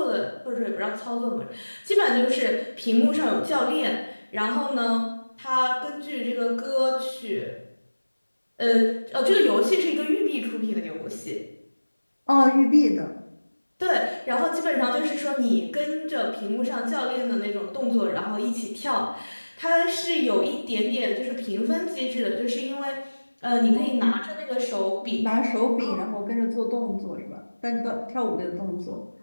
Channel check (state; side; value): inverted; both; correlation -1.00